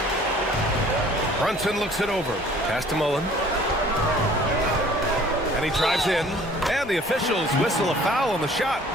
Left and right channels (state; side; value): normal; both; correlation 0.52